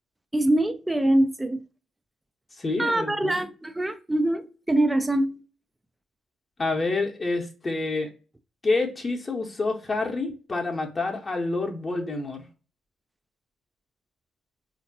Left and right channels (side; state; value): both; normal; correlation 0.90